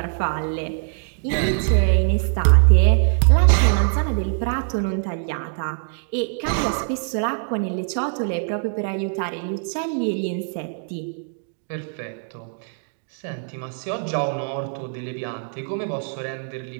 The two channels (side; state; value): left; silent; 60 dB below the other